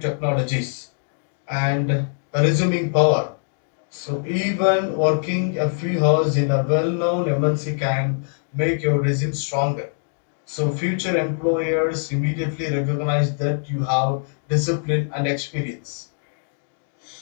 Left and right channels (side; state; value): right; silent; digital silence